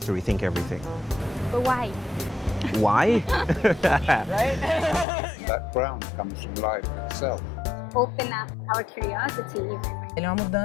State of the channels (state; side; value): drops out; right; at 5.1 s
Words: to rethink everything. But why? Why? That ground comes from life itself. Open up our curiosity. Ele é uma